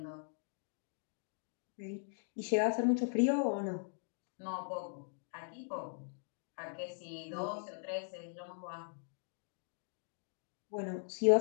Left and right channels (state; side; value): silent; right; digital silence